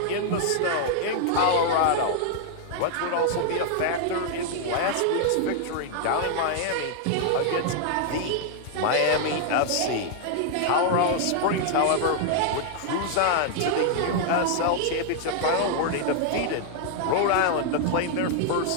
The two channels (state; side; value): different; both; correlation 0.00